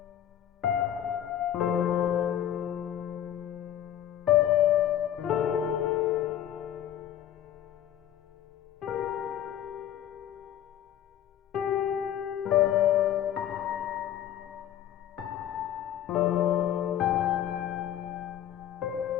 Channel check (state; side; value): quieter; right; 11.1 dB